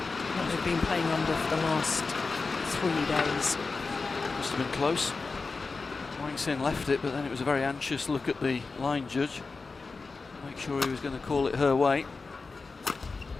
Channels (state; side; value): quieter; right; 4.1 dB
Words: what they've been playing under for the last 3 days. Must have been close. Wang Xin left it, but then it was a very anxious look at the line judge. Make sure he was going to call it her way.